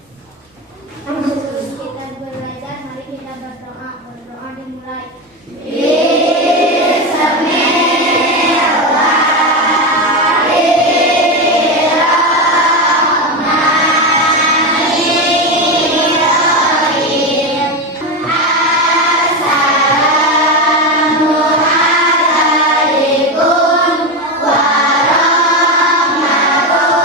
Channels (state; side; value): normal; both; correlation 0.15